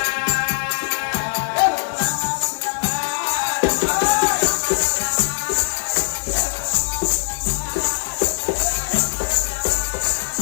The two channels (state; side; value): silent; right; digital silence